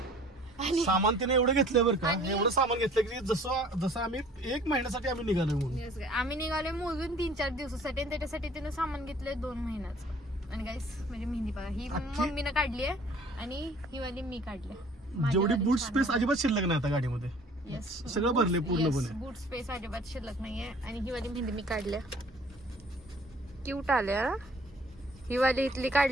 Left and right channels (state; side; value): normal; both; correlation 0.53